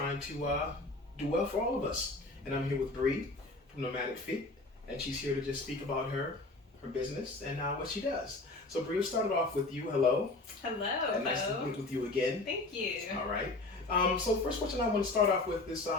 to do well for all of us. And I'm here with Bree from Nomadic, Fete, and she's here to just speak about her business and what she does. So Bree, we'll start it off with you. Hello. Hello. And nice to meet with you again. Thank you. All right. So first question I want to start off with is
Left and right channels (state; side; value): quieter; right; 3.1 dB